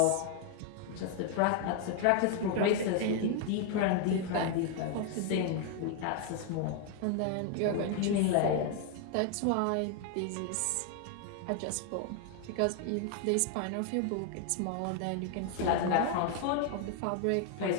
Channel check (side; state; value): both; different; correlation 0.00